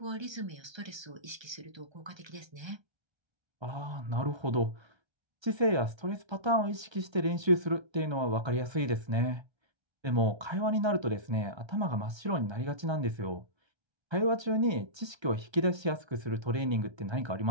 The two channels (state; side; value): late; left; 1.3 ms